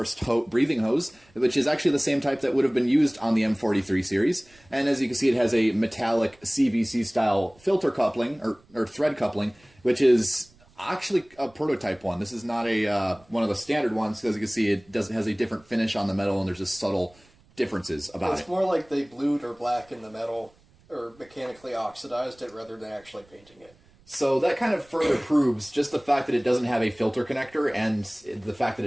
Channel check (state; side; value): noise; right; rumble, 30 dB below the sound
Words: breathing hose, which is actually the same type that would have been used on the M43 series. And as you can see, it has a metallic CVC style filter coupling or thread coupling, which is actually a prototype one. This is not a one of the standard ones, because you can see it has a different finish on the metal, and there's just subtle differences about it. It's more like they blued or blackened the metal, or mechanically oxidized it rather than actually painting it. So that kind of further proves just the fact that it doesn't have a filter connector, and the fact that